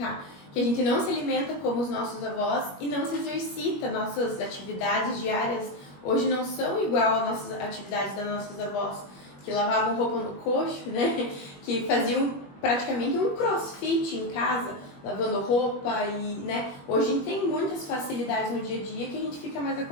que a gente não se alimenta como os nossos avós e não se exercita. Nossas atividades diárias hoje não são igual às nossas atividades das nossas avós, que lavavam roupa no coxo, né? Que faziam praticamente um crossfit em casa, lavando roupa e, né? Hoje a gente tem muitas facilidades no dia a dia que a gente fica mais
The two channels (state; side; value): late; right; 21 ms